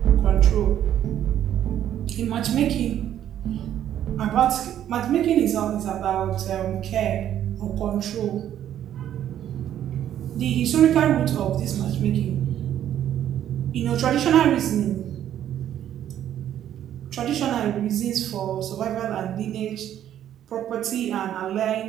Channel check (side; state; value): left; quieter; 10.9 dB